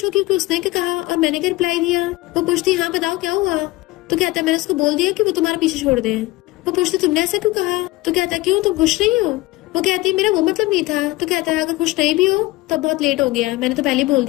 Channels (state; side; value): quieter; right; 19.5 dB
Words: कि उसने क्या कहा और मैंने क्या रिप्लाई दिया। वो पूछती हाँ बताओ क्या हुआ। तो कहता मैंने उसको बोल दिया कि वो तुम्हारा पीछे छोड़ दे। वो पूछती तुमने ऐसा क्यों कहा। तो कहता क्यों तुम खुश नहीं हो। वो कहती मेरा वो मतलब नहीं था। तो कहता है अगर खुश नहीं भी हो तो बहुत लेट हो गया, मैंने तो पहले बोल